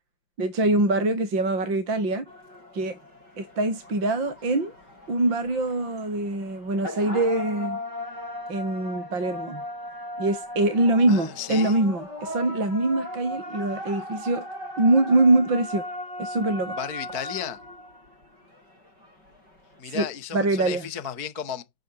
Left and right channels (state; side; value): late; left; 4.7 ms